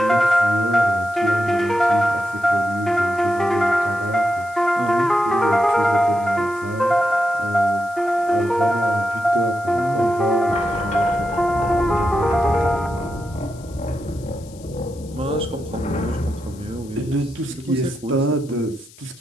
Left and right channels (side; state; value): left; noise; hiss, 24 dB below the sound